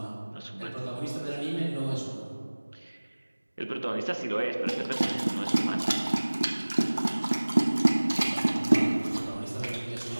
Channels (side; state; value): both; inverted; correlation -1.00